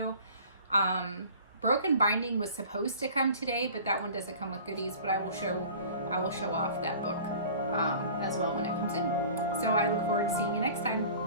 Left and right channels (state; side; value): inverted; both; correlation -0.45